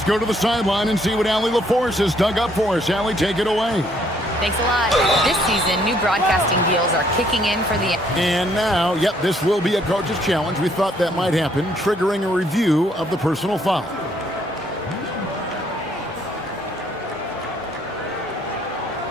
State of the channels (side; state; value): both; normal; correlation 0.67